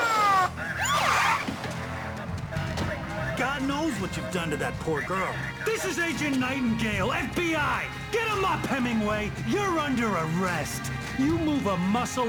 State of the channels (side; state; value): both; identical; correlation 1.00